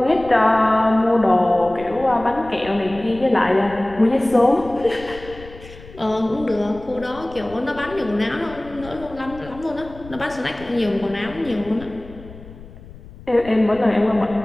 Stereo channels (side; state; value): left; noise; rumble, 18 dB below the sound